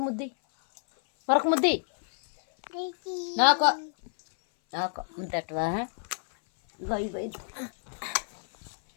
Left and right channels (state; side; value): silent; right; 58 dB below the other